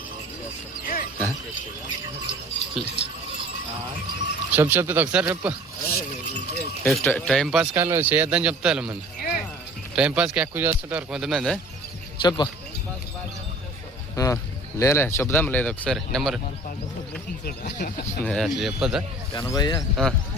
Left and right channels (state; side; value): normal; both; correlation 0.47